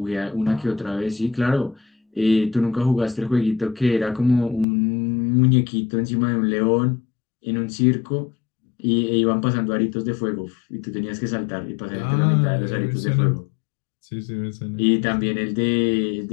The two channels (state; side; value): drops out; right; at 4.7 s